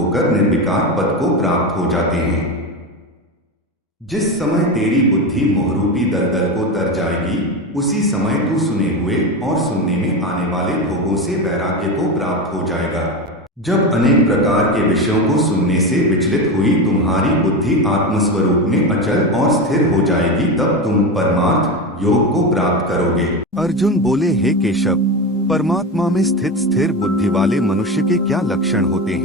निर्विकार पद को प्राप्त हो जाते हैं। जिस समय तेरी बुद्धि मोहरूपी दलदल को तर जाएगी, उसी समय तू सुने हुए और सुनने में आने वाले भोगों से वैराग्य को प्राप्त हो जाएगा। जब अनेक प्रकार के विषयों को सुनने से विचलित हुई तुम्हारी बुद्धि आत्मस्वरूप में अचल और स्थिर हो जाएगी, तब तुम परमार्थ योग को प्राप्त करोगे। अर्जुन बोले, हे केशव, परमात्मा में स्थित स्थिर बुद्धि वाले मनुष्य के क्या लक्षण होते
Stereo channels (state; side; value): normal; both; correlation 0.20